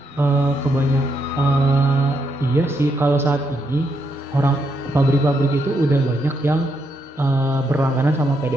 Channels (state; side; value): normal; both; correlation 0.79